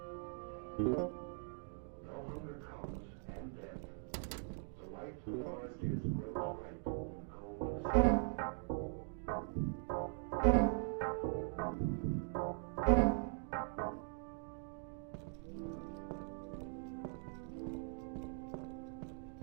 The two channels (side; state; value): left; silent; 50 dB below the other